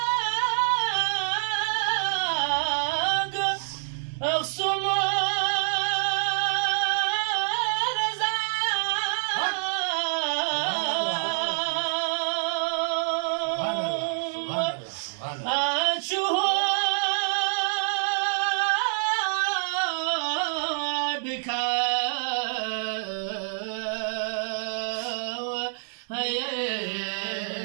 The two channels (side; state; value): left; silent; 60 dB below the other